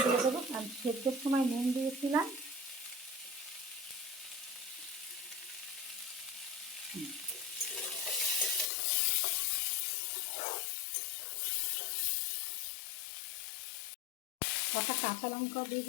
দিয়ে দেবো, কারণ সেদ্ধের সময় নুন দিয়েছিলাম। কটা কাঁচা লঙ্কা দিয়ে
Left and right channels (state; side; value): drops out; right; at 8.7 s